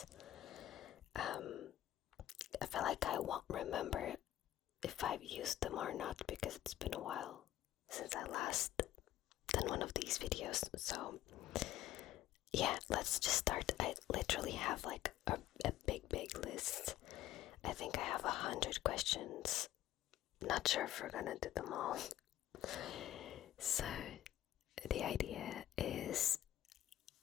I feel like I won't remember if I've used them or not because it's been a while since I last done one of these videos. So yeah, let's just start. I literally have like a big list. I think I have 100 questions. Not sure if we're gonna do them all. So the idea is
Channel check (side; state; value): right; quieter; 13.4 dB